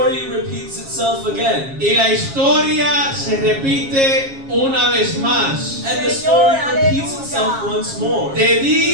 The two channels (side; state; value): left; late; 7.4 ms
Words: repeats itself again. Y la historia se repite una vez más. And the story repeats itself once more. De